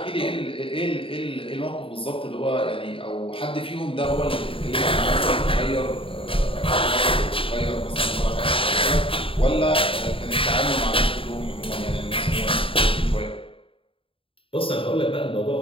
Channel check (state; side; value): late; right; 0.26 ms